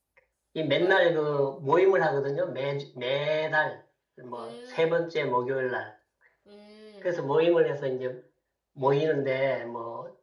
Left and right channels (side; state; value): both; identical; correlation 1.00